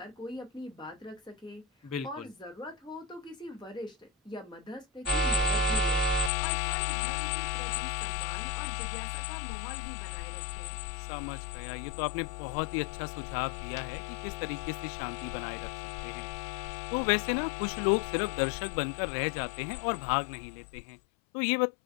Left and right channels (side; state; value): right; drops out; at 6.3 s